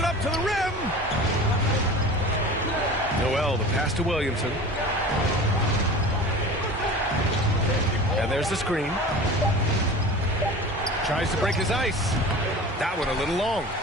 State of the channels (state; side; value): normal; both; correlation 0.37